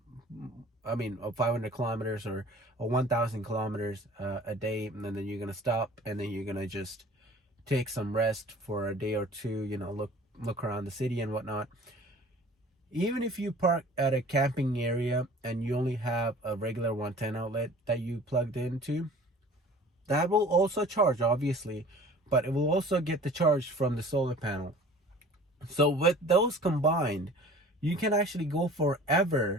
500 kilometers or 1,000 kilometers a day, and then you're gonna stop, and then you're gonna just take some rest for a day or two. Look around the city and whatnot. Even if you park at a camping area and you only have a regular 110 outlet that you plugged into, that will also charge, obviously, but it will also get the charge from the solar panel. So with those combined, you can actually go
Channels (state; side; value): normal; both; correlation 0.46